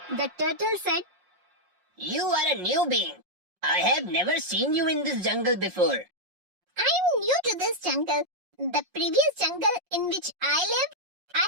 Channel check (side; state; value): left; late; 5.6 ms